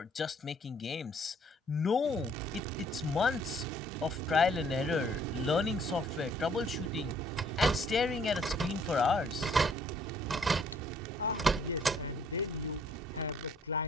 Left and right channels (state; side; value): normal; both; correlation 0.62